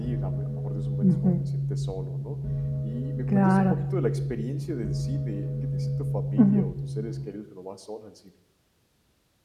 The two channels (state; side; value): identical; both; correlation 1.00